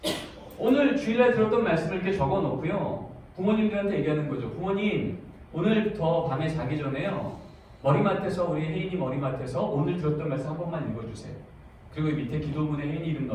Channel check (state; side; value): identical; both; correlation 1.00